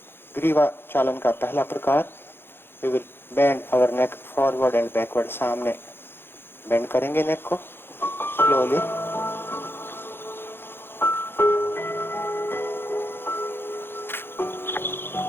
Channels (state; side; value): late; right; 0.10 ms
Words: ग्रीवा चालन का पहला प्रकार, we will bend our neck forward and backward. सामने बेंड करेंगे नेक को स्लोली,